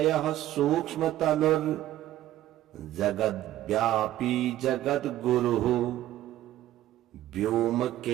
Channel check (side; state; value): left; quieter; 13.8 dB